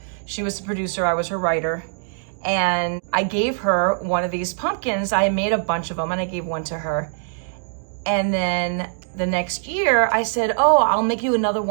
she was the producer, I was her writer, and I gave her one of these pumpkins. I made a bunch of them and I gave one to her. And then the next year I said, oh, I'll make you another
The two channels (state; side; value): silent; left; 64 dB below the other